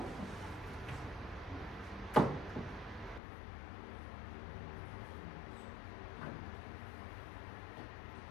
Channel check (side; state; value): right; drops out; at 3.2 s